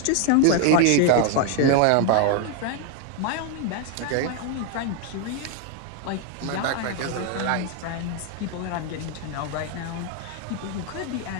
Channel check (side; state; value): both; different; correlation 0.01